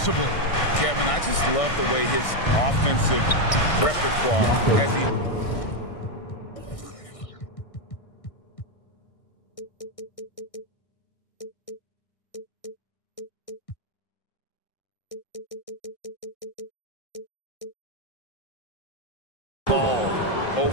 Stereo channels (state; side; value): late; right; 1.6 ms